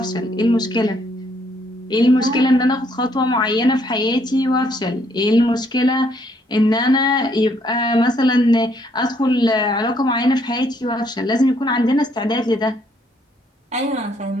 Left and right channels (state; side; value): normal; both; correlation 0.69